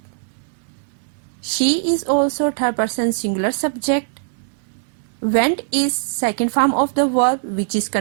She is also third person singular subject. Went is second form of the verb which is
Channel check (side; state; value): left; silent; 65 dB below the other